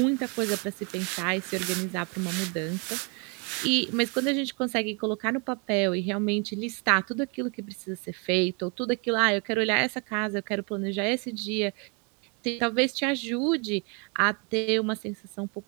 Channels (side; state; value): left; quieter; 34.6 dB